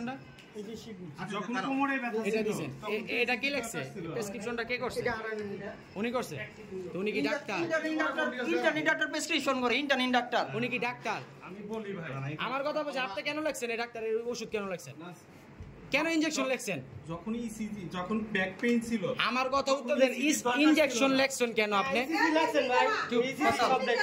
যখন কোমরে ব্যথা এটা দিবেন এটা কি লিখছে প্রেসক্রিপশনটা কে করছে উনি করছে তো উনি কি ডাক্তার ইন্টারনি ডাক্তার প্রেসক্রিপশন করে ইন্টারনি ডাক্তার উনি কি ডাক্তার আমি বলি ভাই আমার কথা বলছি আপনি কেন লিখছেন এই ডাক্তারের ওষুধ কেন লিখছেন কেন ইনজেকশন লিখছেন যখন ইসিজি যখন ব্যাক পেইন ছিল আমার কথা উত্তর দেন ইনজেকশন লিখছেন কেন আপনি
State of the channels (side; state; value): both; identical; correlation 1.00